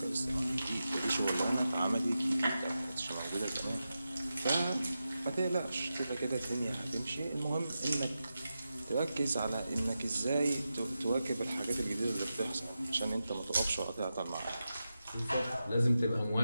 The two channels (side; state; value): both; inverted; correlation -0.91